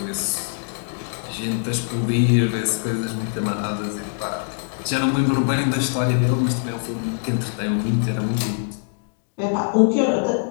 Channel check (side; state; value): right; silent; digital silence